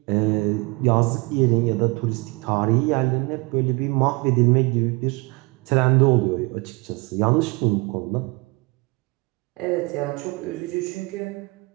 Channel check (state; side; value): quieter; left; 26.7 dB